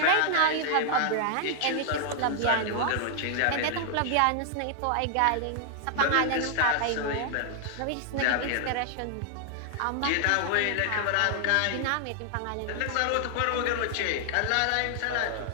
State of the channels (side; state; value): both; different; correlation 0.00